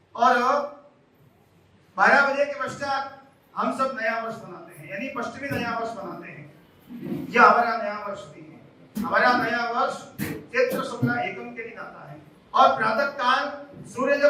और 12 बजे के पश्चात हम सब नया वर्ष मनाते हैं, यानी पश्चिमी नया वर्ष मनाते हैं। यह हमारा नया वर्ष भी है। हमारा नया वर्ष चैत्र शुक्ल एकम के दिन आता है और प्रातः काल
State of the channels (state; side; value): identical; both; correlation 1.00